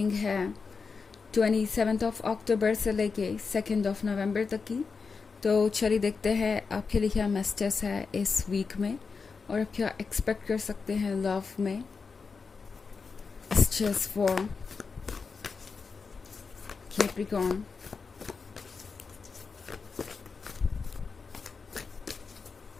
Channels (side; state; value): right; quieter; 5.0 dB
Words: है 27 अक्टूबर से लेके 2 नवंबर तक की। तो चलिए देखते हैं आपके लिए क्या मैसेजेस है इस वीक में और आप क्या एक्सपेक्ट कर सकते हैं लव में। Messages for Capricorn.